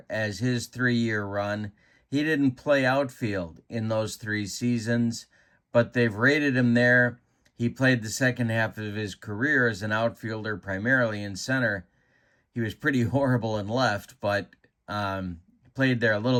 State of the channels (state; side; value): identical; both; correlation 1.00